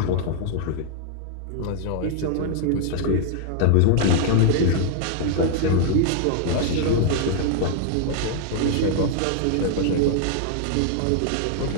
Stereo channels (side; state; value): both; different; correlation -0.01